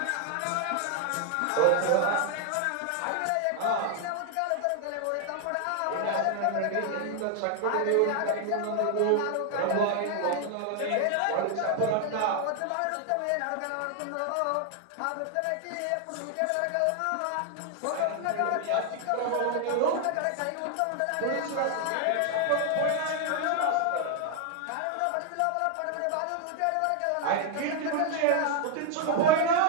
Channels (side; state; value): both; different; correlation 0.00